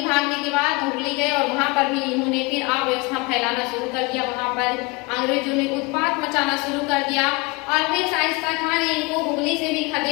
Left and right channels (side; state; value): right; quieter; 25.9 dB